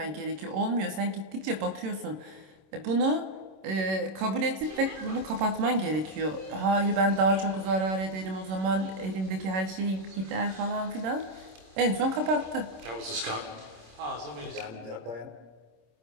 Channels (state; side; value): late; left; 26 ms